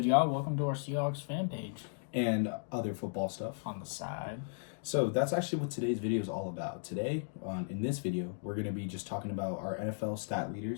y'all? Welcome to our Seahawks fan page and other football stuff. on the side. So that's actually what today's video is all about. Today, in this video, we're going to be just talking about our NFL stat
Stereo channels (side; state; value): right; silent; digital silence